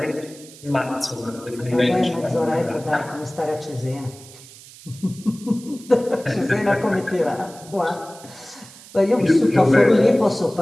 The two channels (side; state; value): right; noise; hiss, 20 dB below the sound